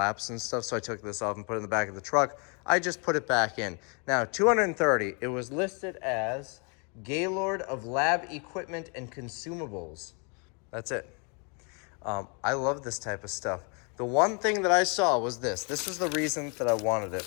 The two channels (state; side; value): quieter; right; 35.4 dB